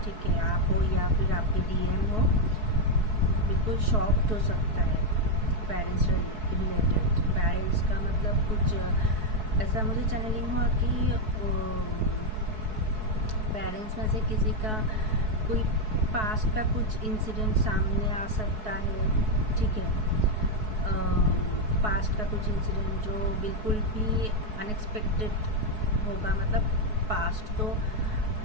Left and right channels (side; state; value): left; late; 4.7 ms